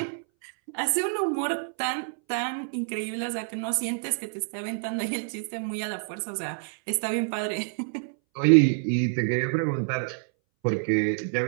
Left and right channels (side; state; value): left; silent; 60 dB below the other